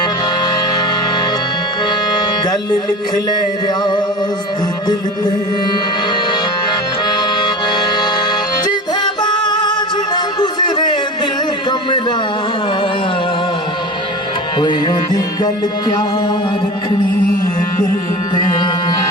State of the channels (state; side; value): normal; both; correlation 0.32